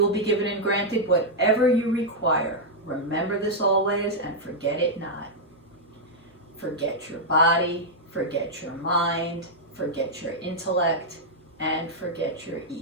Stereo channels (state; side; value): normal; both; correlation -0.04